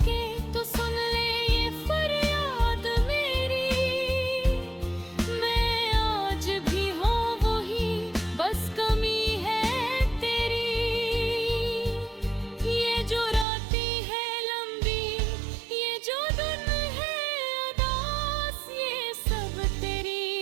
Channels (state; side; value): drops out; left; at 13.5 s